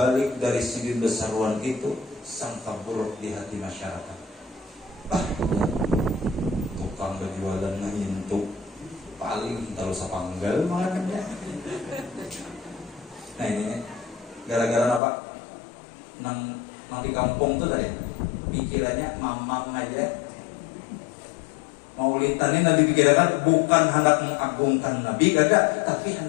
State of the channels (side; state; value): right; drops out; at 15.0 s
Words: dari sidin besaruan itu sangka buruk di hati masyarakat. Tukang berjualan ngintuk paling terus panggal makannya. Nah ini gara-gara apa? Nang di kampung tuh tadi pikirannya mamang aja. Maulidan ini Nabi pikirkan bukan hendak mengagungkan Nabi gagak, tapi